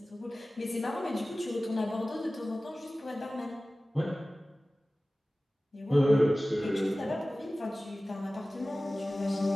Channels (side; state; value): both; normal; correlation 0.97